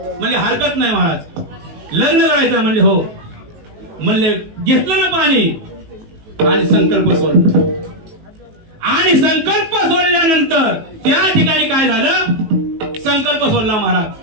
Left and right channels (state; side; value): late; left; 19 ms